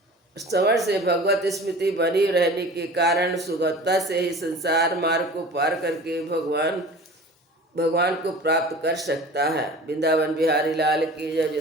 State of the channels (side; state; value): both; normal; correlation 0.40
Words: श्रवण से भगवत स्मृति बनी रहने के कारण सुगमता से ही संसार मार्ग को पार करके भगवान को प्राप्त कर सकता है। वृंदावन बिहारी लाल की जय।